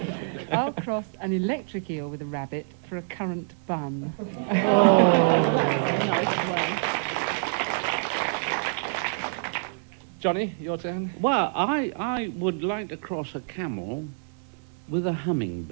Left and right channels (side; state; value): left; silent; digital silence